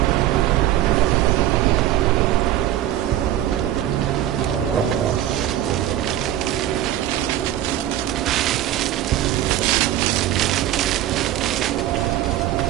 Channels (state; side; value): quieter; left; 12.9 dB